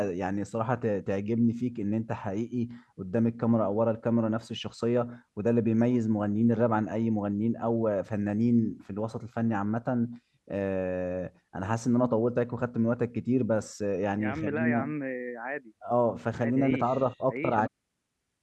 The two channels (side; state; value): both; identical; correlation 1.00